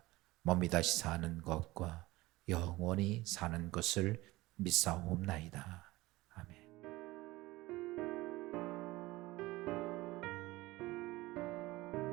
몸이 다시 사는 것과 영원히 사는 것을 믿사옵나이다. 아멘.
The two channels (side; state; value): left; quieter; 19.6 dB